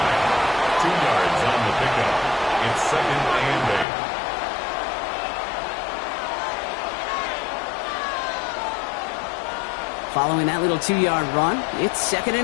2 yards on the pickup. It's 2nd and 8. Following that little 2-yard run, it's 2nd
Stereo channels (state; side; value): drops out; right; at 3.9 s